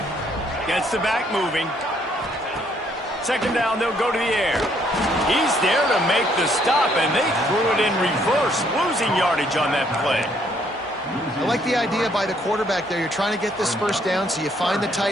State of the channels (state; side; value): normal; both; correlation 0.68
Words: Gets the back moving. Second down, they'll go to the air. He's there to make the stop, and they threw it in reverse, losing yardage on that play. I like the idea by the quarterback there. You're trying to get this first down, so you find the